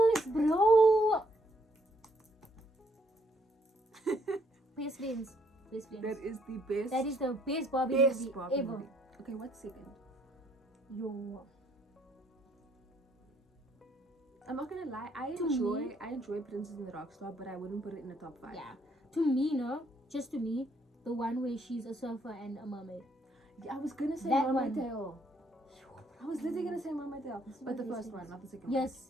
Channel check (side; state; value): both; normal; correlation 0.68